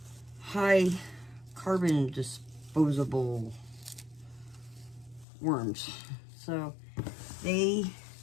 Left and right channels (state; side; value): drops out; right; at 5.2 s